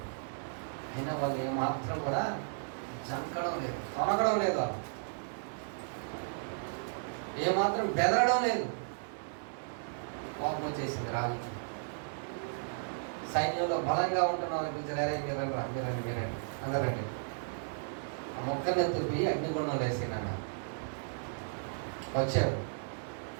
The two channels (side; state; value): left; silent; digital silence